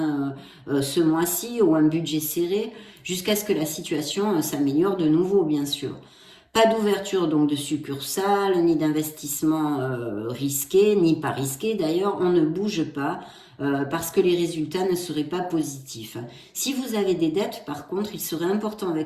ce mois-ci ou un budget serré jusqu'à ce que la situation s'améliore de nouveau bien sûr. Pas d'ouverture donc de succursale, ni d'investissement risqué, ni pas risqué d'ailleurs, on ne bouge pas parce que les résultats ne seraient pas positifs. Si vous avez des dettes par contre, il serait important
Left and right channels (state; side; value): identical; both; correlation 1.00